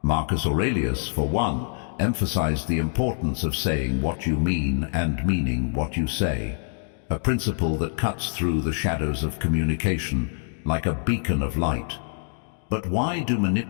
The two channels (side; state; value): right; silent; 62 dB below the other